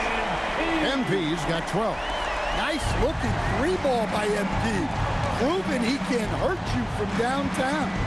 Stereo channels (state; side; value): identical; both; correlation 1.00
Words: MP's got 12. Nice looking 3-ball by MP. Proving he can hurt you from downtown.